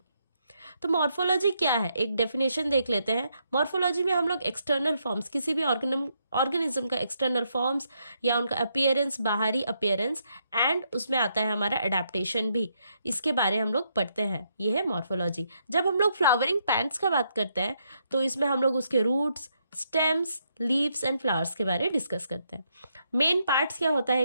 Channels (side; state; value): both; inverted; correlation -0.77